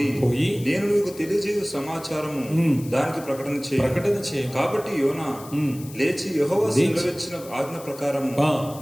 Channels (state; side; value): noise; left; hiss, 18 dB below the sound